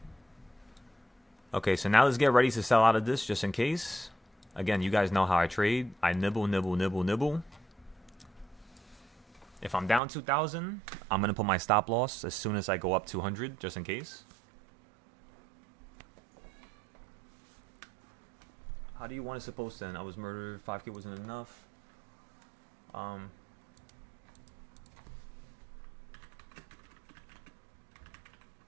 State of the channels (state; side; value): drops out; left; at 10.0 s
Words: Okay, so now let's get ready to sell out of this just in case. Again, you guys know how I trade. I nibble, nibble, nibble, nibble. If I'm down 2,000, I'm going to put my stop loss as soon as I go up 200 just in case. How do you want it supposed to end? I was murdered. 5K wasn't enough.